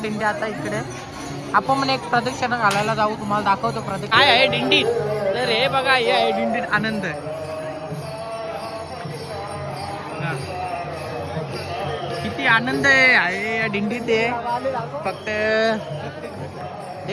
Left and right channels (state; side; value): identical; both; correlation 1.00